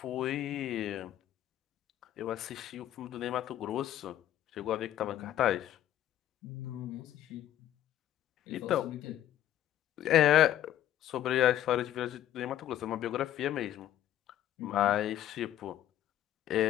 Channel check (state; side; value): quieter; right; 12.1 dB